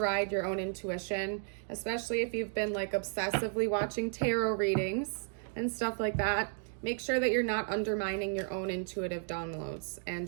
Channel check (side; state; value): left; silent; 55 dB below the other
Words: your own intuition, especially if you've been like obsessively watching tarot readings and stuff like that. Make sure that you're not undermining your own intuitive downloads